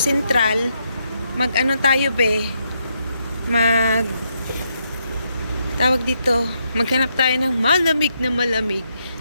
mag-ano tayo, be. Tawag dito, maghanap tayo ng malamig na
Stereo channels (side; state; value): both; inverted; correlation -0.79